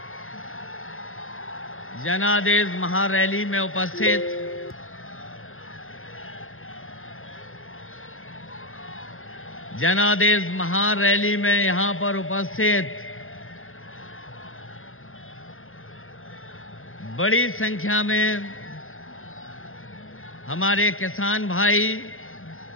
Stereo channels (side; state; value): right; late; 0.60 ms